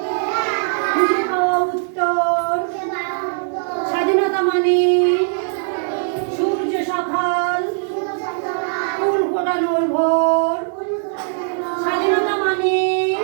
খুঁজে পাওয়া উত্তর, স্বাধীনতা মানে সূর্য সকাল, ফুল ফোটানোর ভোর, স্বাধীনতা মানে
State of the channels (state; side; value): silent; left; 64 dB below the other